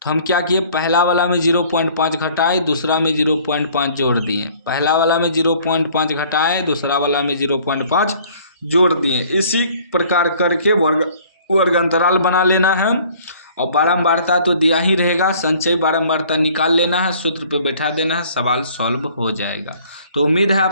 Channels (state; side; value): inverted; both; correlation -0.55